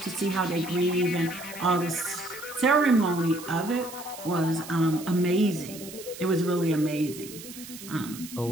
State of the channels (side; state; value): right; noise; hiss, 14 dB below the sound